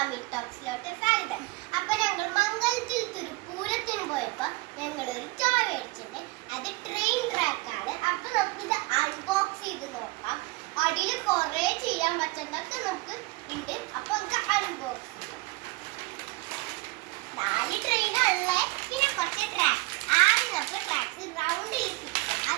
ടോക്സിലോട്ട് സ്വാഗതം. അപ്പൊ ഞങ്ങൾ മംഗലത്തിൽ ഒരു പൂരത്തിന് പോയപ്പോ ഞങ്ങൾ ഒരു ടോയ് മേടിച്ചിട്ടുണ്ട്. അത് ട്രെയിൻ ട്രാക്ക് ആണ്. അപ്പൊ നമുക്ക് ഇത് അൺബോക്സ് ചെയ്ത് നോക്കാം. അടിയിൽ കുറെ ചെയ്യാൻ പറ്റുന്നൊക്കെ നമുക്ക് ഉണ്ട്. അപ്പൊ നമുക്ക് അൺബോക്സ് ചെയ്യാം. 4 ട്രെയിനുള്ളേ, പിന്നെ കുറച്ച് ട്രാക്ക്. ആദ്യം നമുക്ക് ട്രാക്സ് റൗണ്ടിൽ ഫിക്സ് ചെയ്യാം.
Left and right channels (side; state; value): left; quieter; 23.5 dB